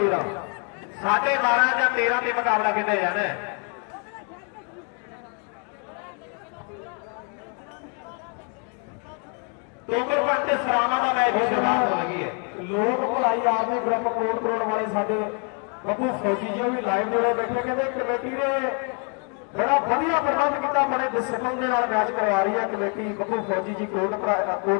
12.5 ਜਾਂ 13 ਦੇ ਮੁਕਾਬਲਾ ਕਿੰਨੇ ਜਾਣਾ। ਤੋਮਰ ਪੰਤੇ ਸਰਾਵਾਂ ਦਾ ਮੈਚ ਸ਼ੁਰੂ ਹੋ ਗਈ ਹੈ। ਲੋਕ ਭਲਾਈ ਆਦਮੀ ਗਰੁੱਪ ਕੋਟ ਵਾਲੇ ਸਾਡੇ ਬੱਬੂ ਫੌਜੀ ਜੀ ਵੀ ਲਾਈਵ ਜੁੜੇ ਬੈਠੇ। ਕਹਿੰਦੇ ਕਮੇਟੀ ਨੇ ਬੜਾ ਵਧੀਆ ਪ੍ਰਬੰਧ ਕੀਤਾ, ਬੜੇ ਡਿਸਪਲਿਨ ਦੇ ਨਾਲ ਮੈਚ ਕਰਵਾ ਰਹੀ ਹੈ ਕਮੇਟੀ। ਬੱਬੂ ਫੌਜੀ ਜੀ ਕੋਟ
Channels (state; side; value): quieter; right; 39.7 dB